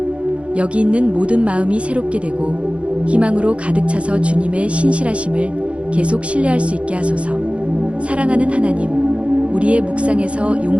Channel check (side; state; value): left; late; 0.061 ms